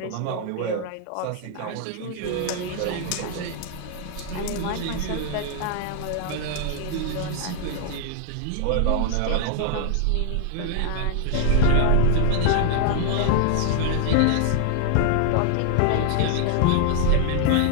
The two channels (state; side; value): different; both; correlation 0.00